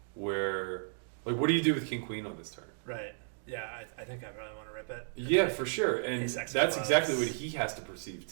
where like what do you do with King Queen on this turn? Right. Yeah, I think I really want to rip it. Yeah, for sure. And that's exactly what he has to perceive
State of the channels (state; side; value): silent; left; digital silence